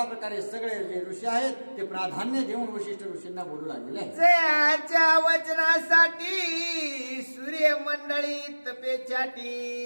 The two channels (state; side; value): inverted; both; correlation -1.00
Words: प्रकारे सगळे जे ऋषी आहेत ते प्राधान्य देऊन वशिष्ठ ऋषींना बोलू लागलेले आहे. जयाच्या वचनासाठी सूर्य मंडळी तपेछाटी